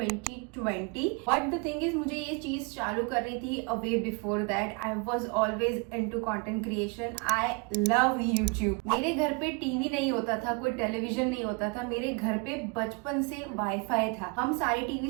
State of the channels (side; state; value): left; quieter; 30.7 dB